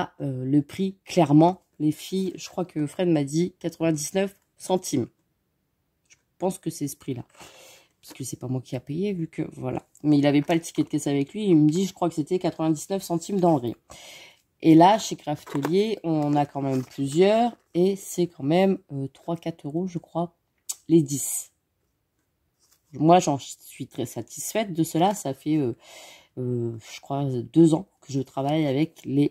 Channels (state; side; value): identical; both; correlation 1.00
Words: le prix, clairement, les filles, je crois que Fred m'a dit 99 centimes. Je pense que c'est ce prix-là. Parce que c'est pas moi qui a payé, vu que, voilà. Mais il n'avait pas le ticket de caisse avec lui. Il me dit, je crois que c'était 99 centimes dans le rayon. Et là, chez Craftelier, on en a quand même plusieurs. Et c'est quand même 3-4 euros, je crois, les 10. Moi, j'en suis très satisfaite de cela. Ça fait... je crois 2 ans que je travaille avec